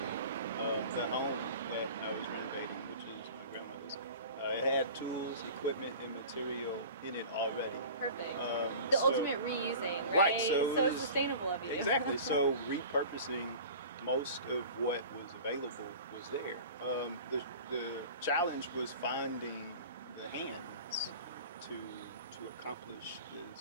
the home that I was renovating, which is my grandmother's, it had tools, equipment, and material in it already. perfect. So- Ultimate reusing, right? Right, so it was- sustainable of you. Exactly. So repurposing most of what was available was there. The challenge was finding the hands to accomplish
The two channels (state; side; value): inverted; both; correlation -0.40